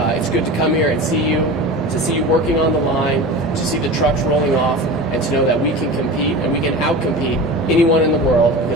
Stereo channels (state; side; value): normal; both; correlation 0.31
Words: It's good to come here and see you working on the line, to see the trucks rolling off, and to know that we can compete and we can outcompete anyone in the world